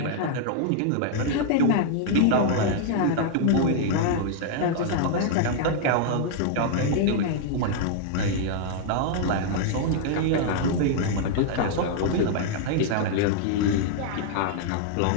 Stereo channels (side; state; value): both; different; correlation -0.01